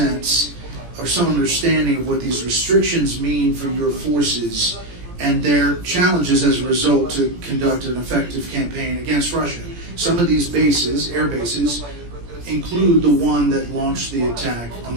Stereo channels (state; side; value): late; left; 17 ms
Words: or some understanding of what these restrictions mean for your forces and their challenges as a result to conduct an effective campaign against Russia? Some of these bases, air bases, include the one that launched the attack on